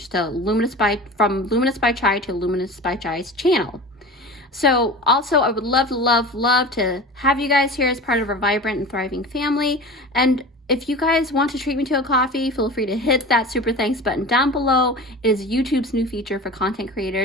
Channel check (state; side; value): normal; both; correlation 0.34